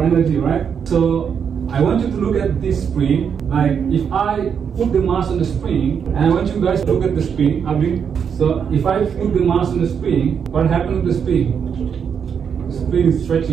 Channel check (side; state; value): left; quieter; 7.2 dB